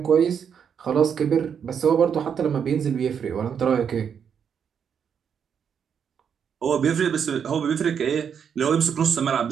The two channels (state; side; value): quieter; left; 7.5 dB